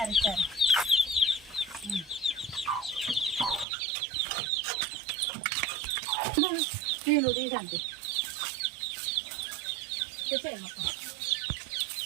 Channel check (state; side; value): drops out; left; at 3.7 s